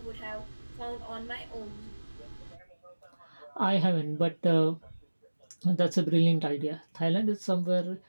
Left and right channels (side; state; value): both; inverted; correlation -1.00